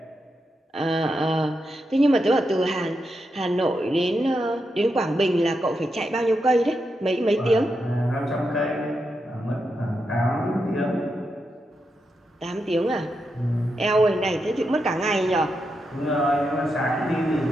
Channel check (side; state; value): both; normal; correlation 0.85